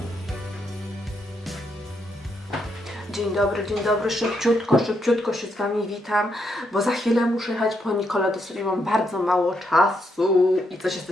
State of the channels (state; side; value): normal; both; correlation 0.79